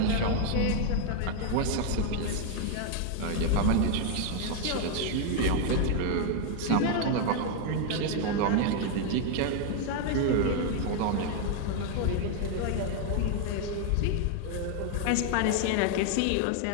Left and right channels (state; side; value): different; both; correlation 0.00